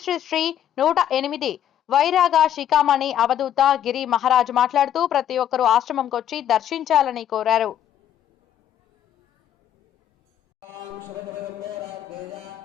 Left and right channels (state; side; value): quieter; right; 10.5 dB